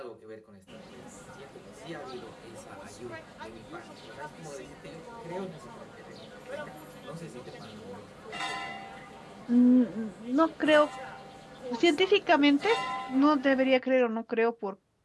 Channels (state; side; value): identical; both; correlation 1.00